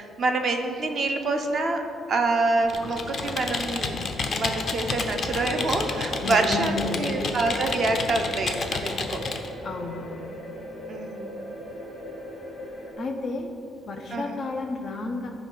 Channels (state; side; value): normal; both; correlation 0.74